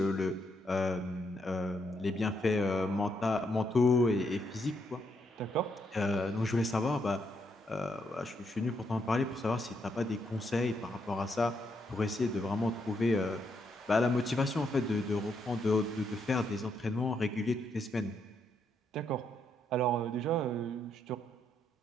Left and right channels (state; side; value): normal; both; correlation 0.77